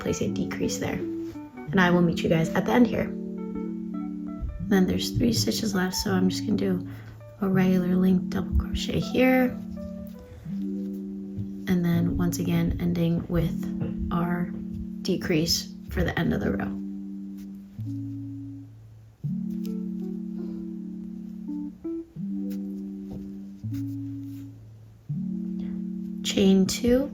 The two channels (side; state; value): both; identical; correlation 1.00